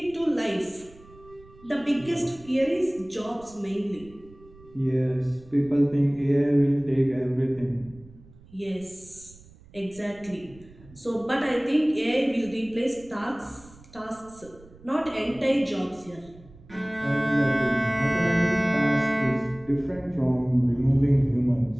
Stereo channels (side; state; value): right; noise; rumble, 23 dB below the sound